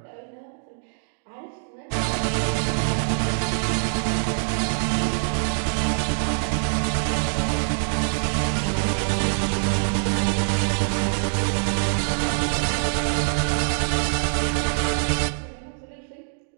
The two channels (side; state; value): left; silent; digital silence